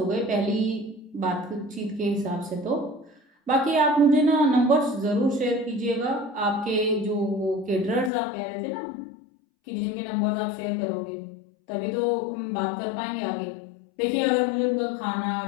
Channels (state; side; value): drops out; right; at 8.1 s